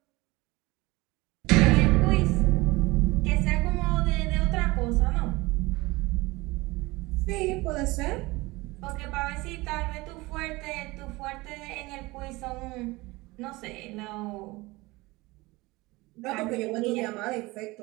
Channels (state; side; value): quieter; left; 21.9 dB